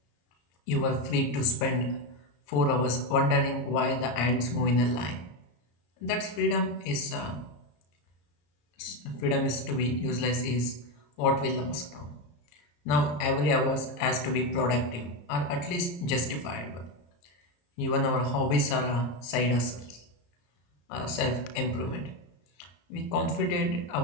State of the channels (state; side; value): late; right; 34 ms